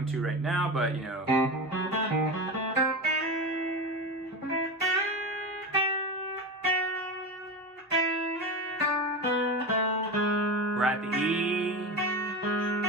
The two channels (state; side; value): normal; both; correlation 0.23